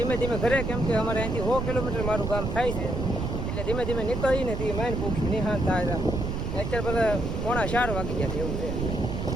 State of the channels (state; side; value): noise; right; rumble, 2 dB below the sound